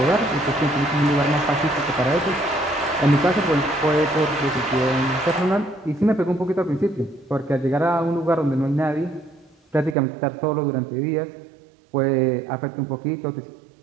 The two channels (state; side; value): drops out; left; at 10.0 s